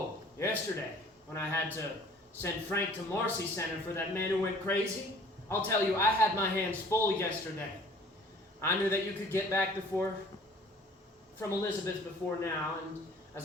yesterday, when I had to send Frank to Marcy Center for that man who went crazy? I'll tell you, I had my hands full yesterday. I knew that you could get back from Elizabeth before now, and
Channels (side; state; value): both; normal; correlation 0.52